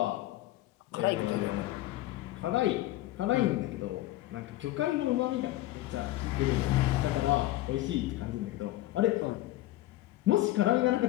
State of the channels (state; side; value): quieter; right; 16.2 dB